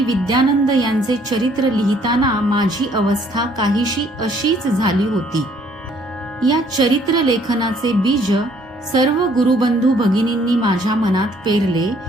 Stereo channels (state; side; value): normal; both; correlation 0.62